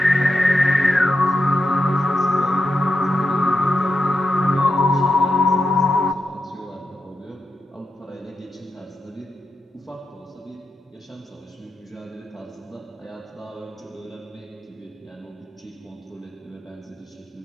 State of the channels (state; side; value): normal; both; correlation 0.87